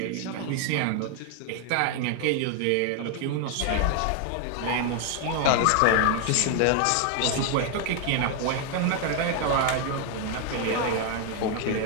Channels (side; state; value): both; different; correlation 0.01